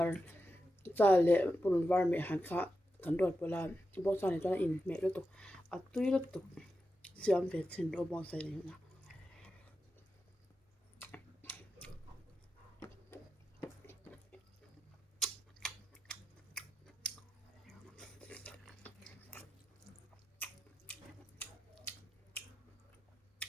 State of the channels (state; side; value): normal; both; correlation 0.89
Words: cha le purun var me han kha kan rot pawla bawng sa ni chuan in meh lutuk a tui lutuk siam ve chin ro bawng sa ni na